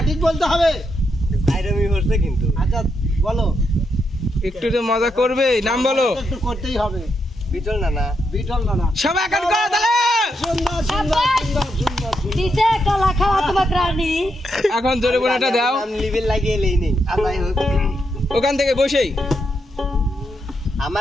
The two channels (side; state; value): both; normal; correlation 0.81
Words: বলতে হবে জাইরামি হচ্ছে কিন্তু আচ্ছা বলো একটু তো মজা করবে, নাম বলো। একটু করতেই হবে বিটল না না বিটল না সবাই এখন করো তাহলে। সুন্দর সুন্দর সুন্দর সুন্দর সুন্দর দিছে কলা খাওয়া তোমার রানী। এখন জোরে বোনাটা দাও নাম লিবেল লাগিয়ে এলেই নেই আর যাই হোক ওখান থেকে বসেই।